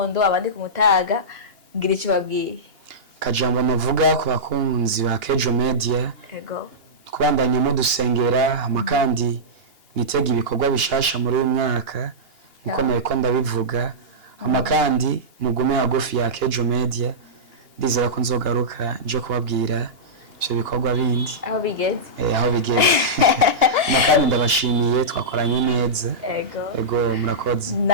abandi ku mutaga, ngira icyo babwiye? Kajambo navuga ku bakunzi ba Akejo Media, kubandanya mu dusengera, amakandi nitega ibikorwa bishasha muri uyu mwaka niko nariko ndabivuga. Amakandi mugume hagufi ya Akejo Media, ndizera ko nzogaruka nje kubabwira ivyo bikorwa bindi aho bigeze. Aho bigeze. Makani ndabashimiye twakoranye neza. Ego murakoze.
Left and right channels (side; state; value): left; late; 2.8 ms